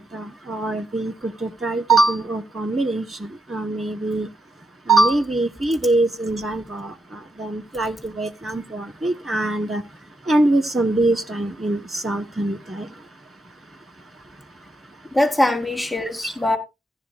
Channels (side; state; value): both; normal; correlation 0.81